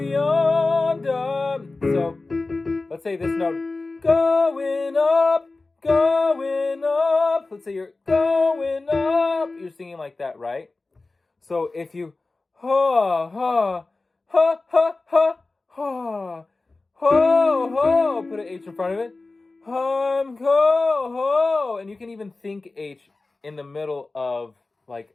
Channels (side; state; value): right; quieter; 3.4 dB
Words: So let's say this note. Going up, going up. Let's say you're going up. You're singing like that, right? So if you ha ha ha ha ha ha ho ho, put an H in front of it. Go ho, and you can even think H in the middle of like